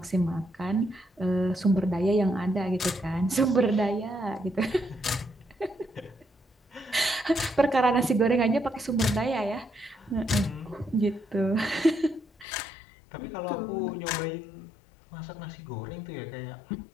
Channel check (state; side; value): drops out; right; at 12.5 s